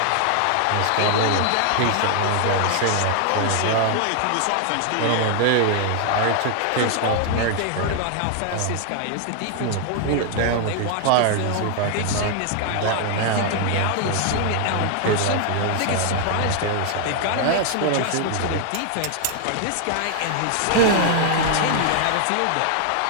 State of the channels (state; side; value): different; both; correlation 0.00